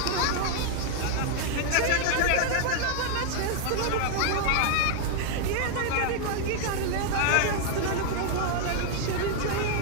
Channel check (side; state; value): both; different; correlation 0.00